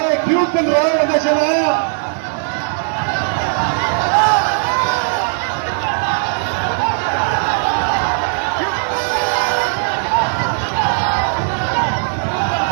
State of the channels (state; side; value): silent; left; digital silence